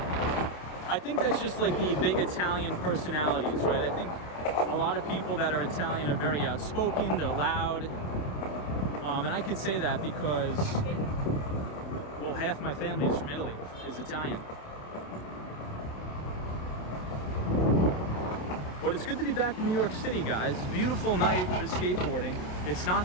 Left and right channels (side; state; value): right; late; 27 ms